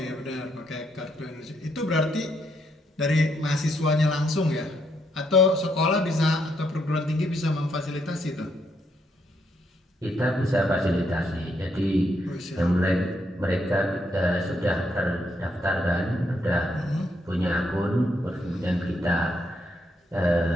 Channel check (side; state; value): both; normal; correlation 0.76